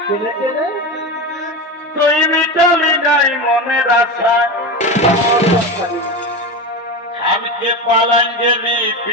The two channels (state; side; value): normal; both; correlation 0.22